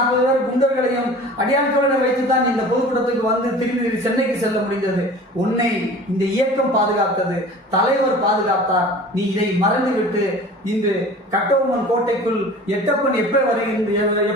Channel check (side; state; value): both; normal; correlation 0.42